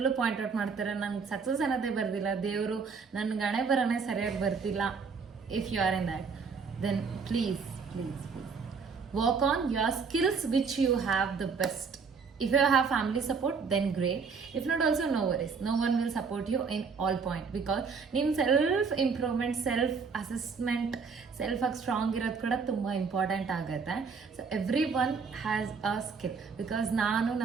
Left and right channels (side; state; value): left; quieter; 5.3 dB